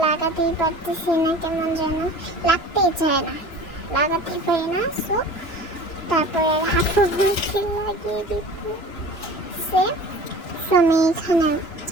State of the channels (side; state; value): right; late; 3.0 ms